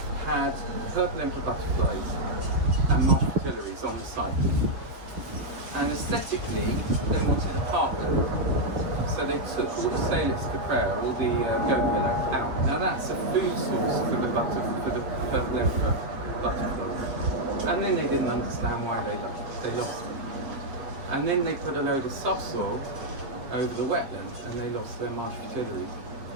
had purple emperor butterflies and marsh fritillaries on the site. And aesthetically, they wanted a parkland. So they took all the Salix caprera, all the goat willow, out. Now that's a food source for the purple emperor butterflies. And then they didn't understand why they lost them. And then they put a load of subsoil over the wetlands, and they lost their marsh fritillaries.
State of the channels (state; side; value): late; left; 7.6 ms